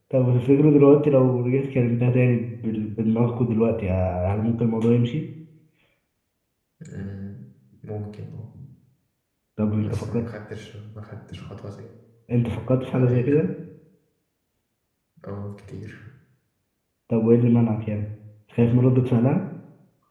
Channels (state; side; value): identical; both; correlation 1.00